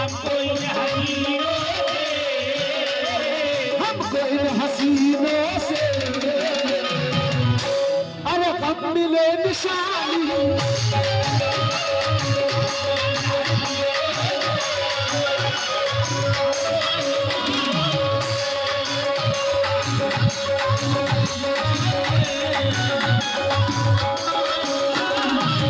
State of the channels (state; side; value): identical; both; correlation 1.00